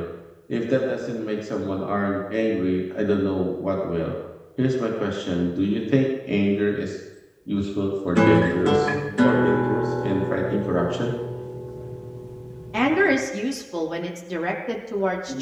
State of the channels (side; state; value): both; identical; correlation 1.00